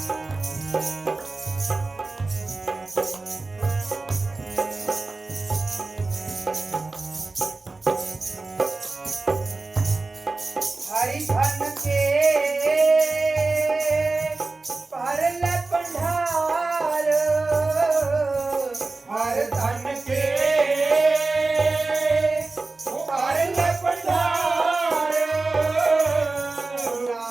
हरि धन के परल पंडार हर धन के परल पंडार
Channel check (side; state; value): left; quieter; 3.5 dB